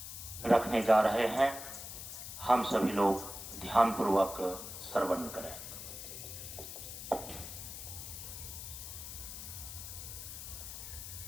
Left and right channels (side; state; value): left; noise; hiss, 9 dB below the sound